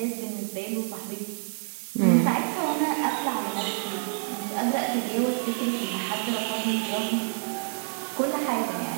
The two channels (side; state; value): left; silent; 58 dB below the other